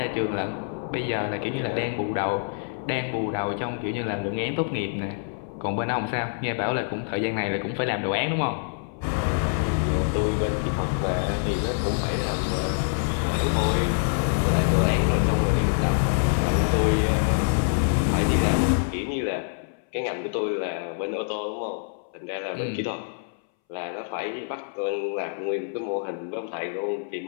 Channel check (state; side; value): silent; right; 61 dB below the other